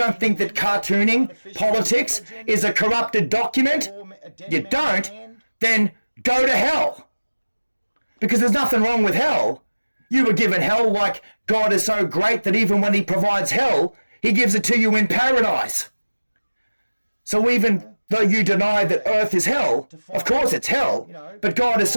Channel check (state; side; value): inverted; both; correlation -1.00